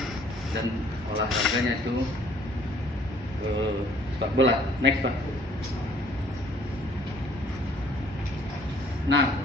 dan olahraganya itu sepak bola. Next Pak. Nah,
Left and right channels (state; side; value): normal; both; correlation 0.59